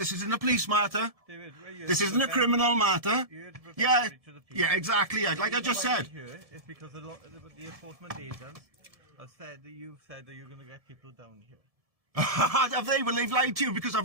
isn't a police matter. This isn't a criminal matter. Yeah, exactly. Like I just said. It's because the enforcement agents have said that you've said that you're going to get people down here. Have they? Well, they've lied to you because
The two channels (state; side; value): late; left; 1.7 ms